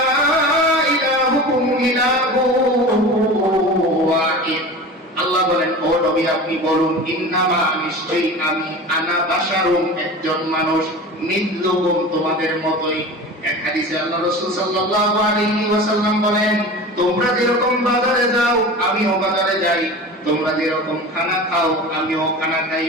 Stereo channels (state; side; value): normal; both; correlation 0.34